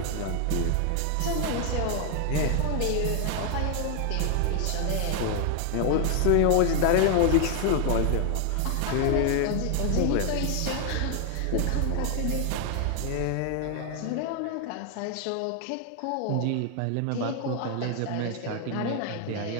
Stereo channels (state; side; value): different; both; correlation 0.00